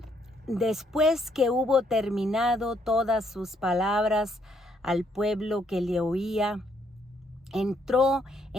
después que hubo terminado todas sus palabras al pueblo que le oía, entró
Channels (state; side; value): normal; both; correlation 0.71